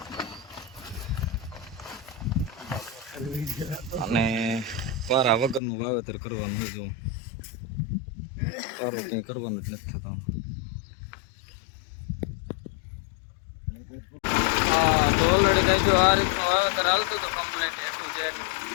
અને પારા વગરનું વાવેતર કરવાનું હોય. જો પારો ક્યાંય કરવાનું જ નથી થતો. તો ઓલરેડી કઈ જો આ રીતનું વાવેતર હાલતું હતું કમ્પ્લીટ એટલું જે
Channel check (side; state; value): right; drops out; at 5.6 s